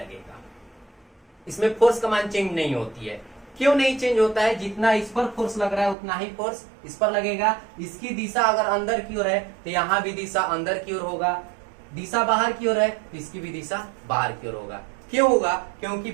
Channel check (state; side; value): drops out; left; at 6.0 s